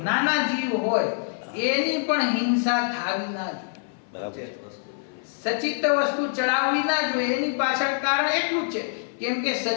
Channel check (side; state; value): right; silent; 55 dB below the other